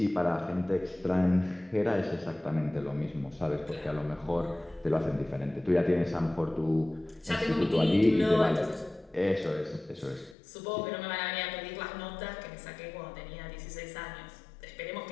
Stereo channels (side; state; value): right; drops out; at 10.4 s